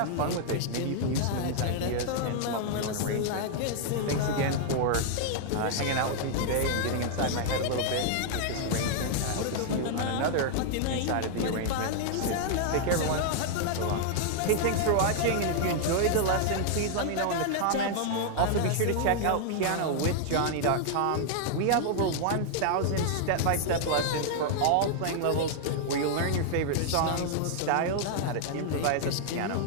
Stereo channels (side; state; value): both; different; correlation 0.00